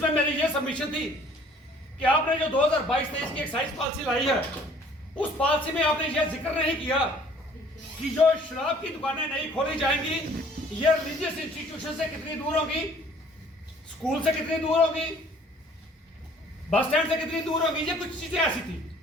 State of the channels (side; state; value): both; normal; correlation 0.55